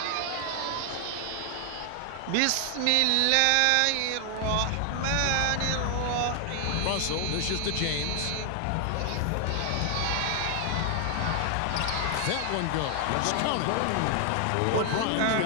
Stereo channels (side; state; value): both; different; correlation 0.00